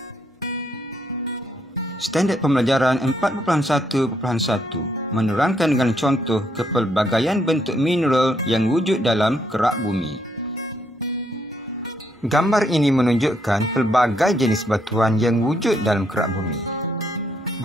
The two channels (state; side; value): normal; both; correlation 0.74